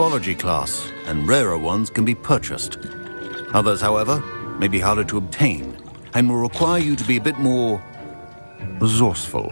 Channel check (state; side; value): inverted; both; correlation -1.00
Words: class, and rarer ones can be purchased. Others, however, may be harder to obtain, and will require you to be a bit more resourceful.